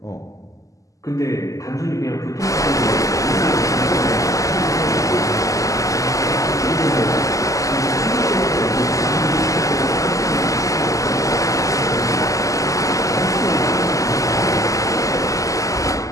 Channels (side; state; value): right; late; 0.16 ms